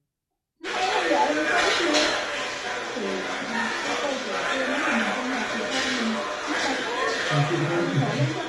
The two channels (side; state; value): both; identical; correlation 1.00